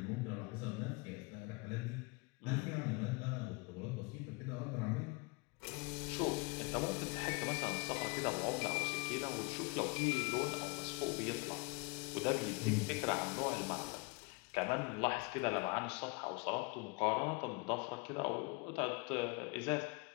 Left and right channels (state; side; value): quieter; right; 28.2 dB